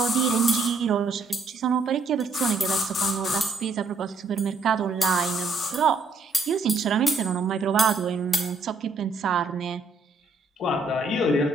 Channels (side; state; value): left; quieter; 3.7 dB